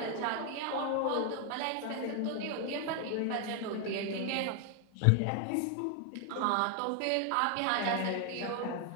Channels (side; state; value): both; different; correlation 0.00